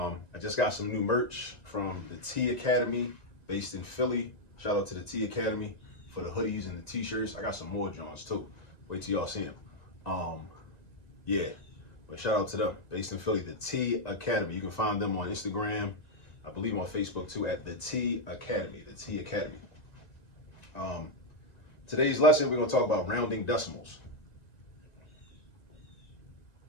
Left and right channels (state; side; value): late; right; 1.9 ms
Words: just got some new merch from the T Academy based in Philly. Shout out to the T Academy for the hoodies and the t-shirts. I got some more Johns too. Wait till y'all see them. Yeah, but shout out to them based in Philly, the T Academy. You can find them on Instagram, I believe on Facebook too, at the T Academy, the T Academy. Today's lesson, we're going to talk about rounding decimals.